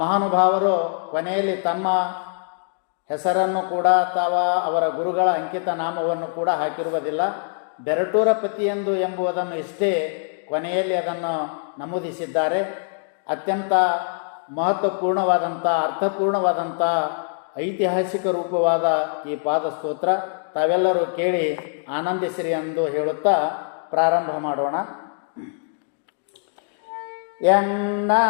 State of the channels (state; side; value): silent; right; digital silence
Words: ಮಹಾನುಭಾವರು ಕೊನೆಯಲ್ಲಿ ತಮ್ಮ ಹೆಸರನ್ನು ಕೂಡ ಅಥವಾ ಅವರ ಗುರುಗಳ ಅಂಕಿತ ನಾಮವನ್ನು ಕೂಡ ಹಾಕಿರುವುದಿಲ್ಲ. ಬೆರಟೂರ ಪತಿಯೆಂದು ಎಂಬುದನ್ನು ಇಷ್ಟೇ ಕೊನೆಯಲ್ಲಿ ಅದನ್ನು ನಮೂದಿಸಿದ್ದಾರೆ. ಅತ್ಯಂತ ಮಹತ್ವಪೂರ್ಣವಾದಂಥ, ಅರ್ಥಪೂರ್ಣವಾದಂಥ, ಐತಿಹಾಸಿಕ ರೂಪವಾದ ಈ ಪಾದಸ್ತೋತ್ರ ತಾವೆಲ್ಲರೂ ಕೇಳಿ ಆನಂದಿಸಿರಿ ಎಂದು ಹೇಳುತ್ತಾ ಪ್ರಾರಂಭ ಮಾಡೋಣ. ಎನ್ನ